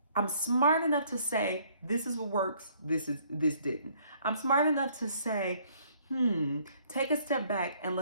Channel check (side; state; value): both; inverted; correlation -0.63